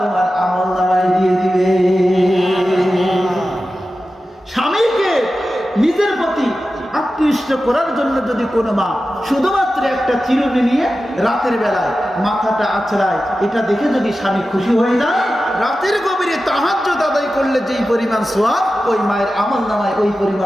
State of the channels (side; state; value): both; normal; correlation 0.93